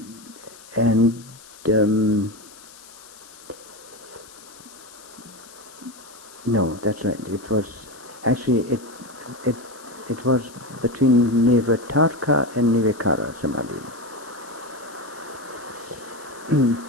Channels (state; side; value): noise; left; hiss, 20 dB below the sound